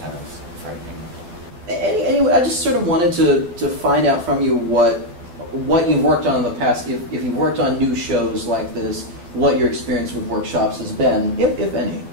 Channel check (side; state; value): left; late; 12 ms